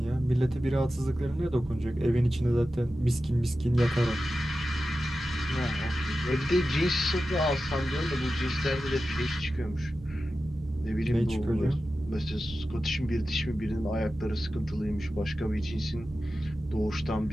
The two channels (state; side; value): normal; both; correlation 0.93